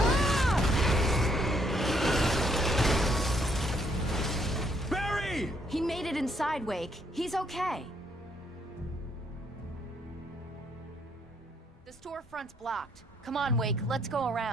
Barry! He made it inside, Wake. He's okay. The storefront's blocked. Come on, Wake. Let's go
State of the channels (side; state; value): both; normal; correlation 0.70